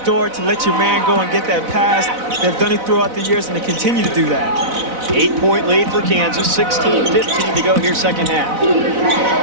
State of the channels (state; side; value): late; left; 4.0 ms